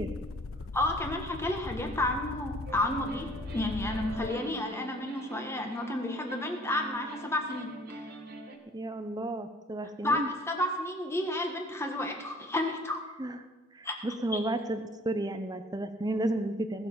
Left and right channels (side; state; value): both; normal; correlation 0.55